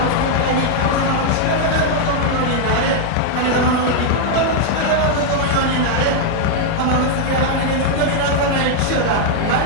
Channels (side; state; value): both; different; correlation 0.00